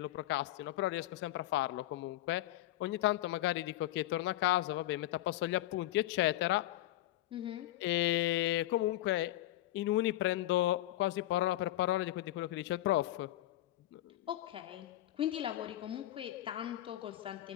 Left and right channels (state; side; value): quieter; right; 15.2 dB